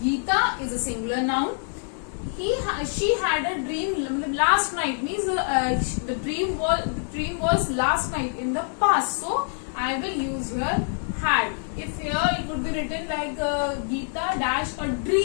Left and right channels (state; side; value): silent; right; 61 dB below the other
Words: Geeta is a singular noun. She had a dream last night, means the dream was last night in the past. So I will use here had. If here it would be written like Geeta dash a